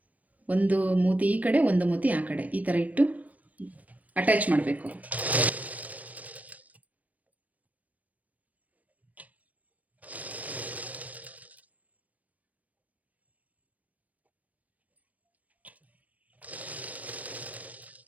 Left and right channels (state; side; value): late; left; 0.072 ms